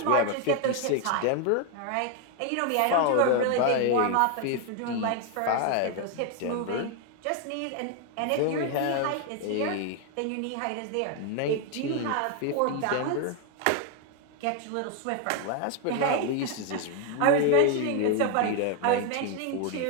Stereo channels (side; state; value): both; different; correlation 0.01